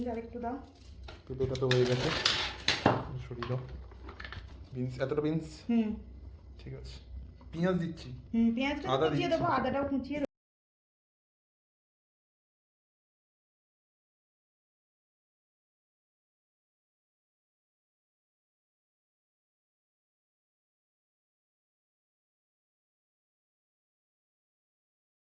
আরেকটু দাও। পেঁপেটা তো হয়ে গেছে, সরিয়ে দাও। বিনস, এতটা বিনস। ঠিক আছে, পেঁয়াজ দিচ্ছি। পেঁয়াজটা আদা কুচিয়ে দিচ্ছি। দেবো, আদাটাও কুচিয়ে দেবো।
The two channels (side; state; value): both; identical; correlation 1.00